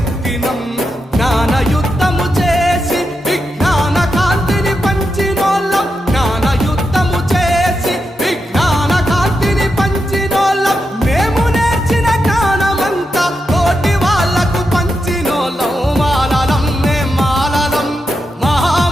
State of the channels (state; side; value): normal; both; correlation 0.86